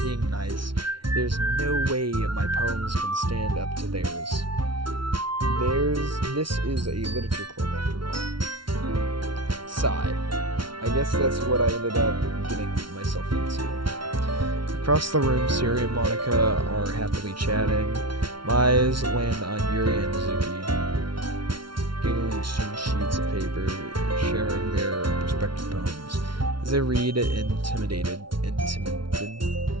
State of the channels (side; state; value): left; late; 0.73 ms